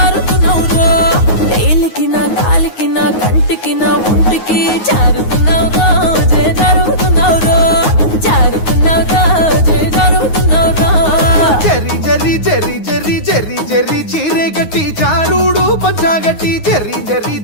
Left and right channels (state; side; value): late; right; 9.5 ms